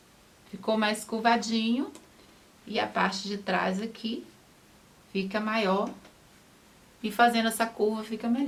Ficou mais curvadinho. E a parte de trás aqui fica maior. E fazendo essa curva fica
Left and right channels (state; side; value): identical; both; correlation 1.00